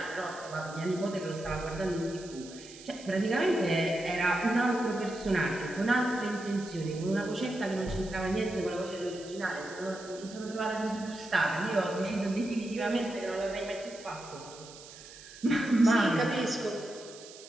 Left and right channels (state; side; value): noise; right; hiss, 17 dB below the sound